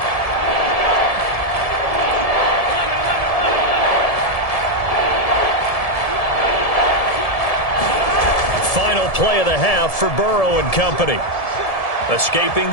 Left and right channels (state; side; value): late; right; 1.7 ms